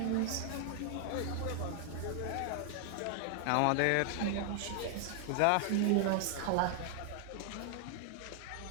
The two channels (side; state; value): both; different; correlation 0.00